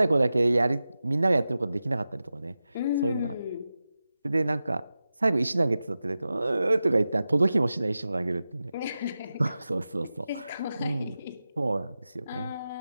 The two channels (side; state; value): both; inverted; correlation -0.93